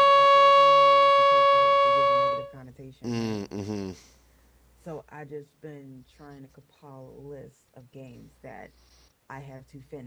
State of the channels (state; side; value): identical; both; correlation 1.00